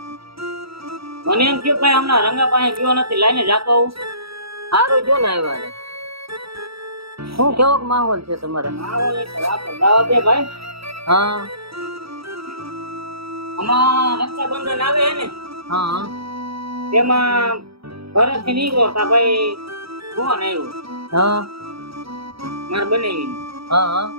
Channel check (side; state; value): left; late; 0.76 ms